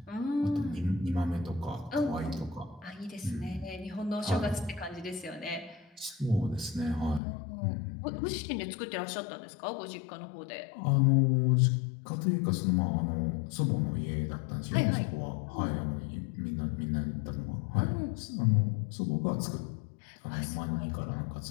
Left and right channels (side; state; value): right; drops out; at 7.2 s